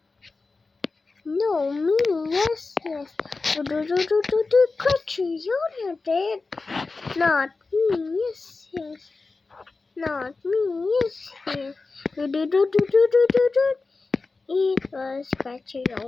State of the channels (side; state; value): right; quieter; 3.9 dB